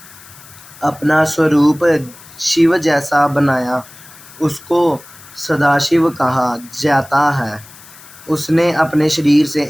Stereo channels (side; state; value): left; noise; hiss, 21 dB below the sound